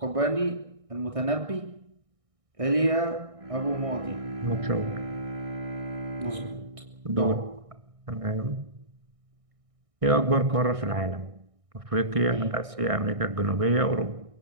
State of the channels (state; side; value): late; left; 1.6 ms